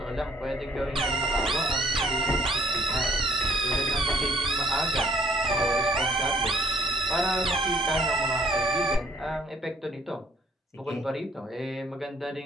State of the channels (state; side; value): normal; both; correlation 0.61